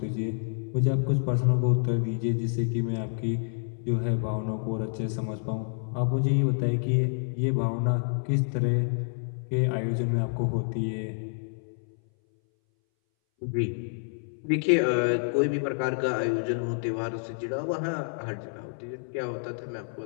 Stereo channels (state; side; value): silent; right; 59 dB below the other